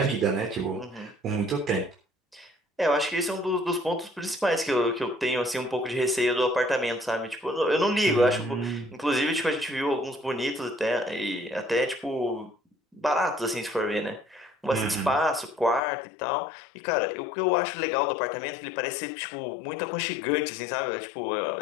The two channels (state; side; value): drops out; right; at 15.8 s